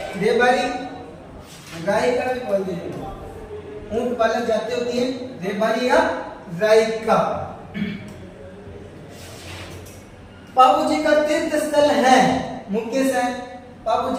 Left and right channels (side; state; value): both; identical; correlation 1.00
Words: रेबारी रायका भी बोलते हैं। ऊंट पालक जाति होती है रेबारी या रायका। बाबू जी का तीर्थ स्थल है मुख्य से। बाबू